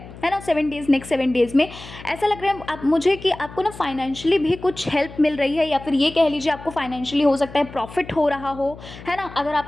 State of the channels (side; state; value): left; noise; hum, 16 dB below the sound